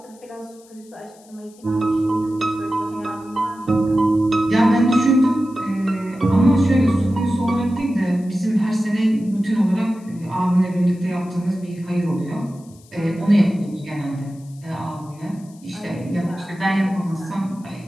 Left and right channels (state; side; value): noise; left; hiss, 27 dB below the sound